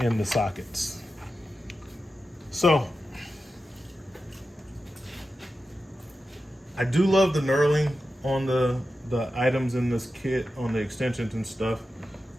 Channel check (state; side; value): normal; both; correlation 0.91